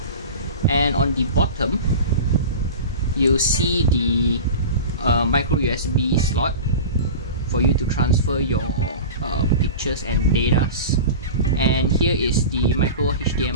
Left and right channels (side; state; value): both; inverted; correlation -0.31